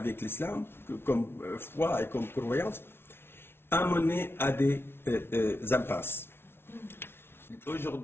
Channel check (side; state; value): right; late; 0.12 ms